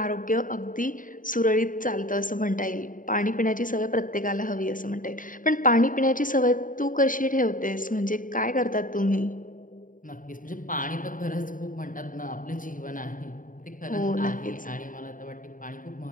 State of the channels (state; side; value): late; right; 0.39 ms